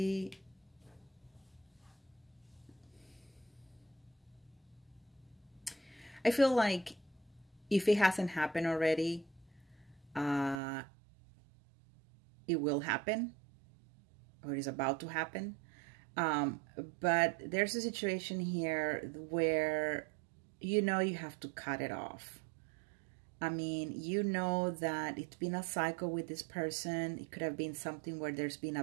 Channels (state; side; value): drops out; left; at 10.6 s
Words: if it hasn't happened already, it will happen, or is about to happen. But there's a situation here where, you have to cut it off. I mean, that it's been a cycle with this person. It could have been something where there's been